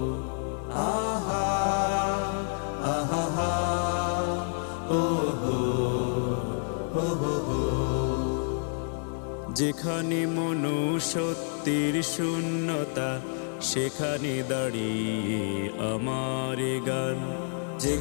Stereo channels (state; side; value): silent; right; 59 dB below the other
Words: আহা আহা হা ও হো হো হো হো। যেখানে মনুষ্যত্বের শূন্যতা সেখানে দাঁড়িয়ে আমার গান,